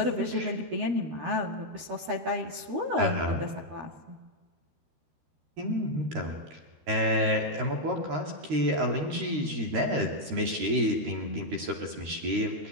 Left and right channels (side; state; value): left; late; 13 ms